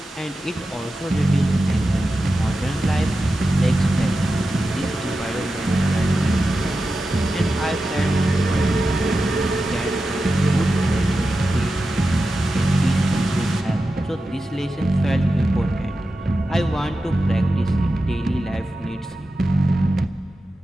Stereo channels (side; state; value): both; normal; correlation 0.92